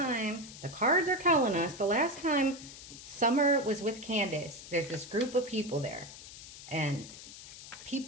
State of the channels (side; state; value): left; noise; hiss, 15 dB below the sound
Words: the cards are telling us, the last time Summer was with Candace, there's this group of people there. And